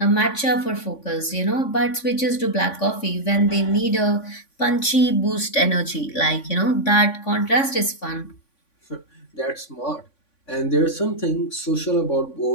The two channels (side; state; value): right; late; 3.5 ms